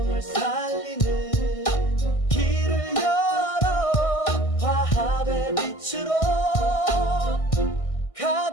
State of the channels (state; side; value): late; right; 1.6 ms